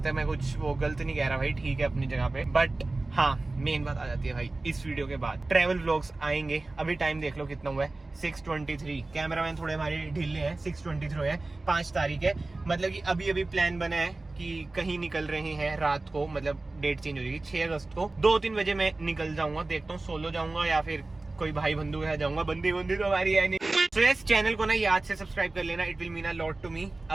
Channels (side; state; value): left; quieter; 3.1 dB